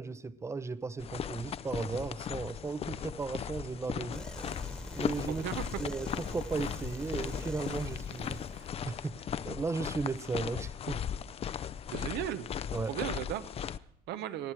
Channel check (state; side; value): normal; both; correlation 0.60